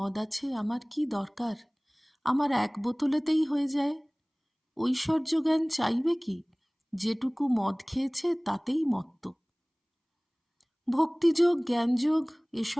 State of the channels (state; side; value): identical; both; correlation 1.00